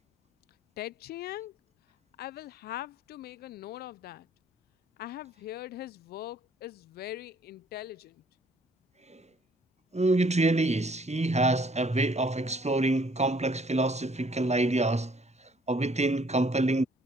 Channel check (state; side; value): normal; both; correlation 0.61